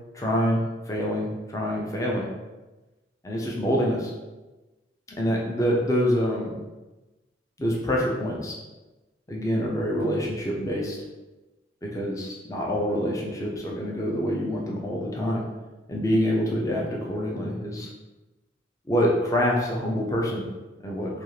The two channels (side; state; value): both; normal; correlation 0.63